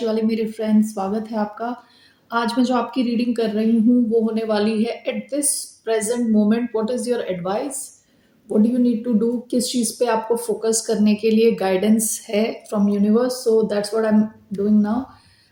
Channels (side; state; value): both; identical; correlation 1.00